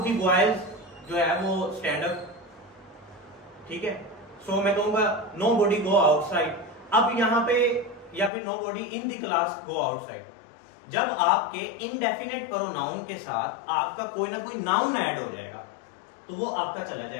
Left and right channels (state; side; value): drops out; right; at 8.3 s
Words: द बॉयज जो है वो स्टैंड अप, ठीक है। सो मैं कहूंगा नो बॉडी गो आउटसाइड। अब यहां पे, या फिर nobody in the class go outside. जब आपके इनडेफिनेट प्रोनाउन के साथ आपका कोई ना कोई नाउन ऐड हो जाएगा, तो वो आपका चला